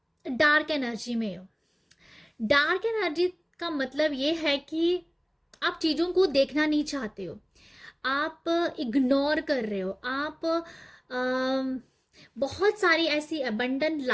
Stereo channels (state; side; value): identical; both; correlation 1.00